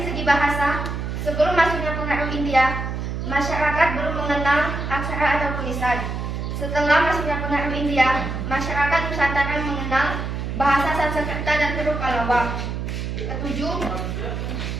segi bahasa. Sebelum masuknya pengaruh India, masyarakat belum mengenal aksara atau tulisan. Setelah masuknya pengaruh India, masyarakat Nusantara mengenal bahasa Sanskerta dan huruf Pallava. Ketujuh,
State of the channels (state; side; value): noise; right; hum, 4 dB below the sound